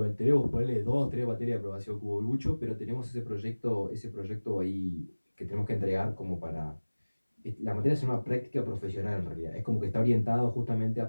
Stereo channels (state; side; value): inverted; both; correlation -1.00